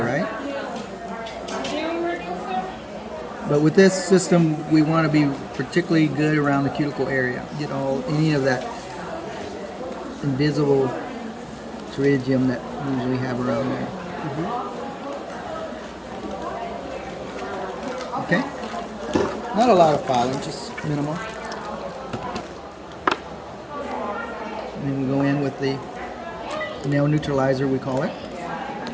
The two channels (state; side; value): identical; both; correlation 1.00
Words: But with this system, we want to be particularly good around the cuticle area. You know, any of that invisible pterygium that we usually have around there. Okay? Not a lot of filing, just minimal. And then we go in with the nail neutralizer, we call it.